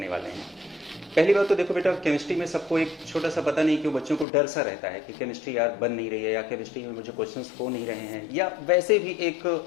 वाले हैं। पहली बात तो देखो बेटा, केमिस्ट्री में सबको एक छोटा सा पता नहीं क्यों बच्चों को डर सा रहता है कि केमिस्ट्री यार बन नहीं रही है, या केमिस्ट्री में मुझे क्वेश्चंस हो नहीं रहे हैं, या वैसे भी एक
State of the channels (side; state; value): right; drops out; at 4.2 s